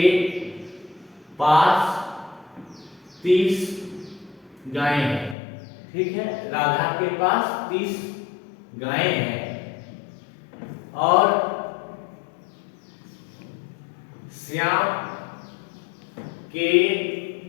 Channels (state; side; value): drops out; right; at 5.4 s